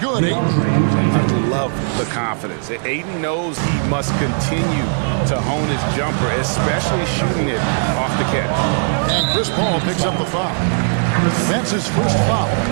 I love the confidence. Ayton knows he must continue to hone his jumper, especially shooting it off the catch. And Chris Paul picks up the foul. That's his first foul.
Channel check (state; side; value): silent; left; digital silence